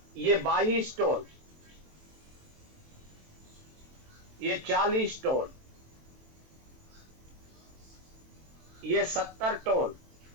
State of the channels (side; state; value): left; late; 23 ms